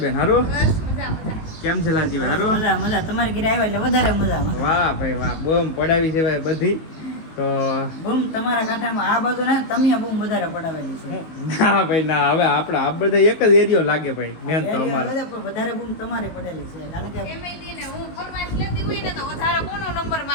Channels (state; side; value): late; right; 19 ms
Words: બેન? હારું? કેમ છે લાલજીભાઈ? હારું? મજા. તમારે ઘરે આવ્યા એટલે વધારે મજા. વાહ ભાઈ વાહ, બમ પડાવી છે ભાઈ બધી. તો બૂમ તમારા કાંઠામાં આ બાજુ ને તમે બૂમ વધારે પડાવેલી છે. ના ભાઈ ના, હવે આપણે આ બધા એક જ એરિયો લાગે ભાઈ, મેન તો અમારે વધારે બૂમ તમારે પડેલી છે, કારણ કે એમએડી ને હું ફરમાઈશ લેતી હોય ને તો વધારે કોનો નંબર